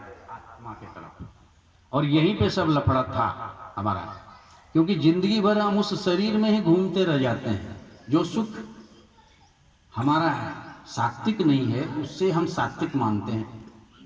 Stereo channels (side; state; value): both; identical; correlation 1.00